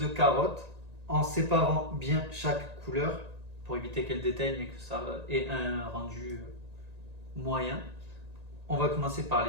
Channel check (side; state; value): left; late; 1.9 ms